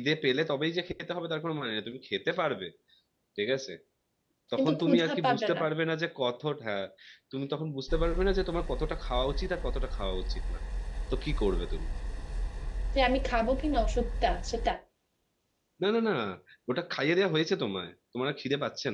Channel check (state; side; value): identical; both; correlation 1.00